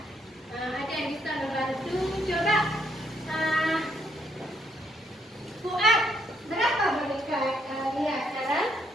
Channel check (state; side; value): normal; both; correlation 0.72